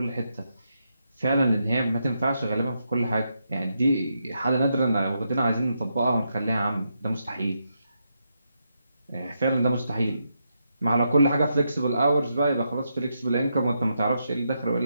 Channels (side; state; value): both; inverted; correlation -0.82